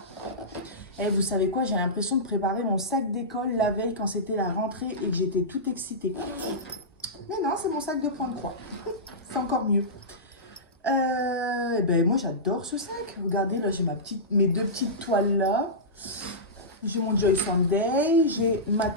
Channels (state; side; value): normal; both; correlation -0.16